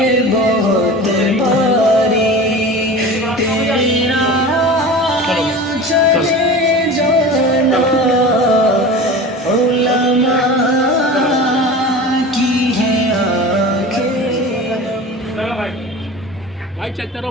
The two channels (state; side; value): normal; both; correlation 0.34